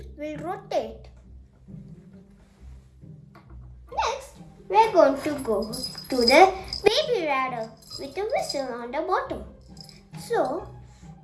will rotate. Next, we are going to go to the baby radar with a whistle on the bottom. So,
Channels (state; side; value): identical; both; correlation 1.00